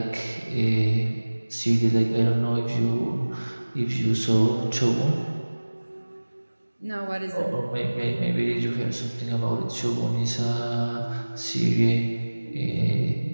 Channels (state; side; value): inverted; both; correlation -1.00